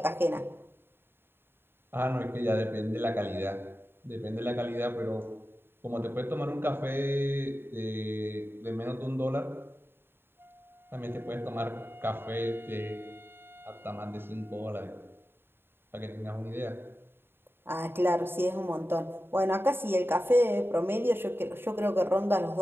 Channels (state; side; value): late; left; 0.11 ms